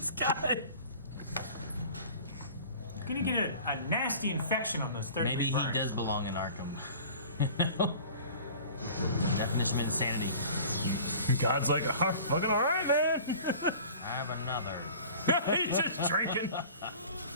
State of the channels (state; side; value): inverted; both; correlation -0.44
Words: guy. You're gonna get a nasty infection on those 30 Maybe he burns. does belong in Arkham. Definition of insanity. God's like, oh, fucking all right, man. I have another. He's just drinking.